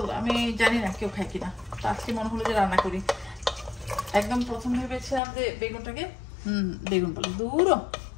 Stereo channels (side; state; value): right; drops out; at 5.2 s